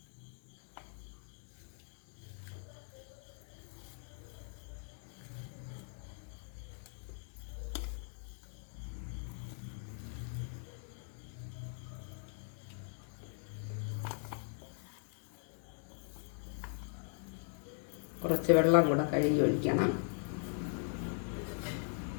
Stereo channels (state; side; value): silent; right; 51 dB below the other